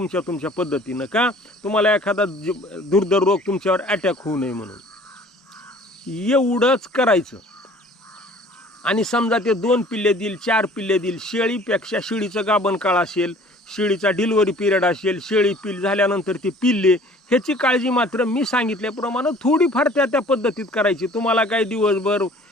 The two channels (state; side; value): normal; both; correlation 0.51